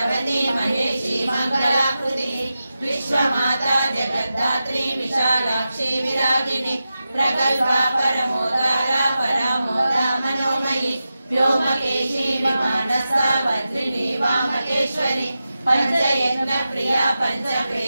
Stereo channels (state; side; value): inverted; both; correlation -0.92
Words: महेशी मंगलाकृति विश्वमाता जगद्धात्री विशालाक्षी विरागिनी प्रगल्भा परमोदारा परामोदा मनोमयी व्योमकेशी विमानस्था वज्रिणी वामकेश्वरी पंचयज्ञ प्रिया